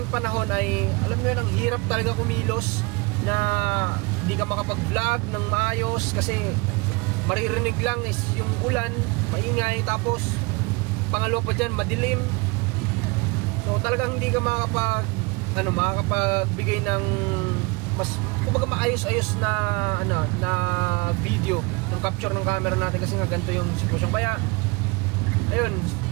panahon ay alam mo yun, ang hirap talaga kumilos na hindi ka makapag-vlog ng maayos kasi maririnig lang is yung ulan, maingay, tapos pangalawa pa dyan, madilim. So talagang hindi ka makakapagbigay ng mas kumbaga maayos-ayos na na video ng capture ng camera natin kasi nga ganito yung sitwasyon. Kaya ayun,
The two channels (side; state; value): left; quieter; 27.3 dB